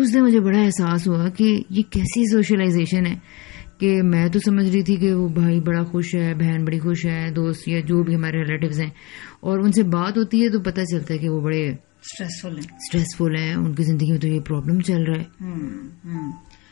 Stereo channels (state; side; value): quieter; right; 23.9 dB